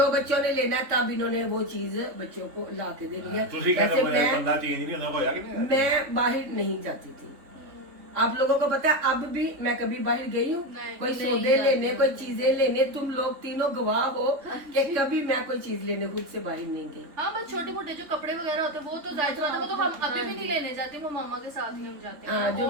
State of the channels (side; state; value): left; late; 3.5 ms